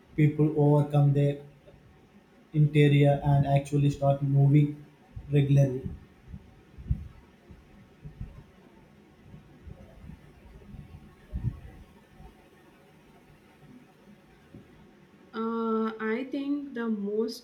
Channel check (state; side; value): identical; both; correlation 1.00